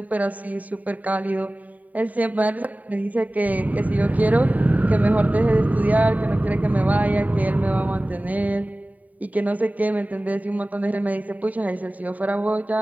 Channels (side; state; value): left; late; 0.073 ms